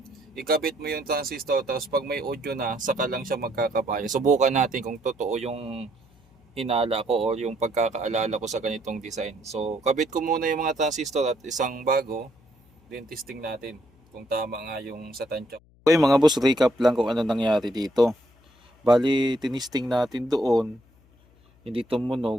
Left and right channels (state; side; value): noise; left; hum, 30 dB below the sound